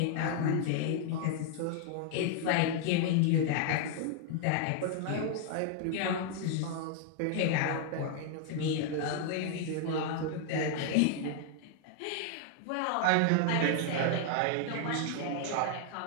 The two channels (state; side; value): different; both; correlation 0.00